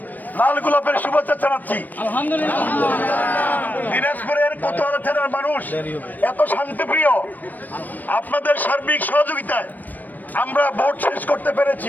লাল গোলাপের শুভেচ্ছা জানাচ্ছি। দিনাজপুরের কোতোয়ালি থানার মানুষ এত শান্তিপ্রিয়, আপনাদের সার্বিক সহযোগিতায় আমরা ভোট শেষ করতে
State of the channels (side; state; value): right; late; 0.086 ms